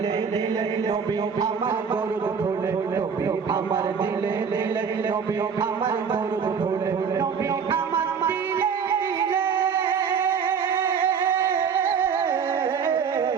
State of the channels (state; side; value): quieter; left; 6.5 dB